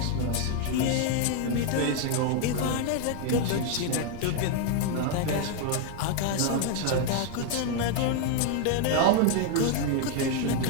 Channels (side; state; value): both; different; correlation 0.00